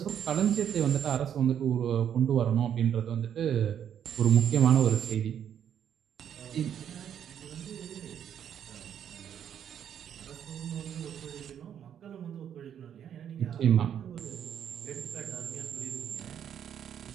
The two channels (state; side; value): quieter; left; 9.2 dB